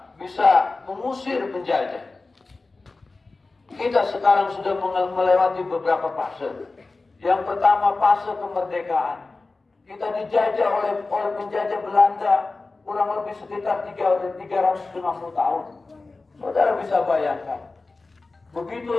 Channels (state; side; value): quieter; right; 3.6 dB